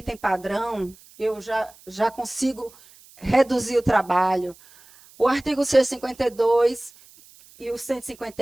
padrão, eu já consigo reduzir o trabalho. O artigo 152 e o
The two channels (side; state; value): right; noise; hiss, 25 dB below the sound